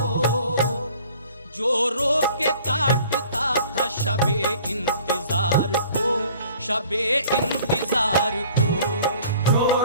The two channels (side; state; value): both; inverted; correlation -0.52